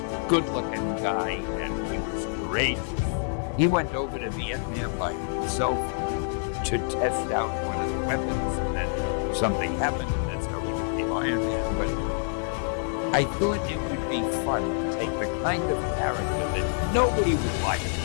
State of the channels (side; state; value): right; silent; digital silence